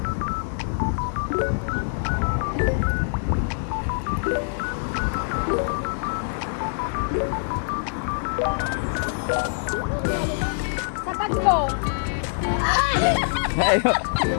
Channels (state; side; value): silent; right; digital silence